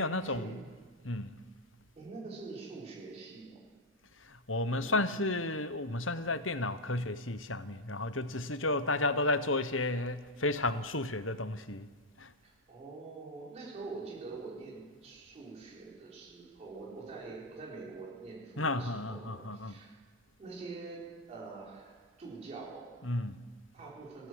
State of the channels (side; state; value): both; normal; correlation 0.03